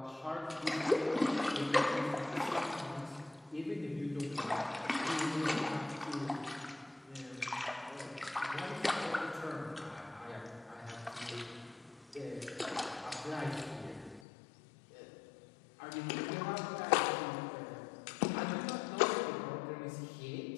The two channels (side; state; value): right; drops out; at 14.2 s